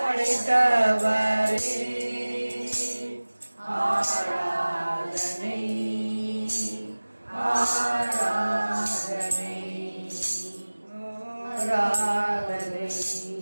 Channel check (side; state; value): both; inverted; correlation -1.00